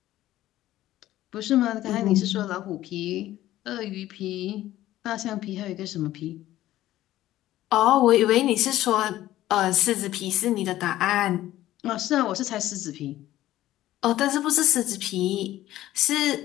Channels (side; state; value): right; quieter; 14.5 dB